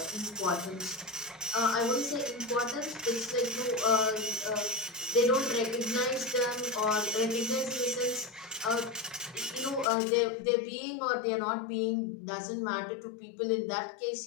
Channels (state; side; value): drops out; right; at 9.9 s